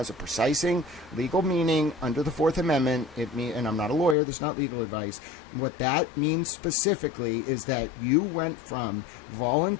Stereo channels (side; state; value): right; drops out; at 4.2 s